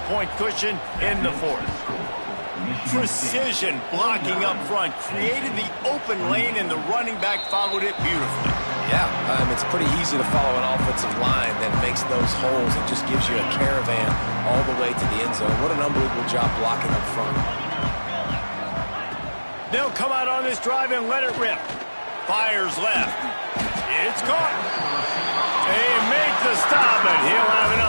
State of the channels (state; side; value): inverted; both; correlation -1.00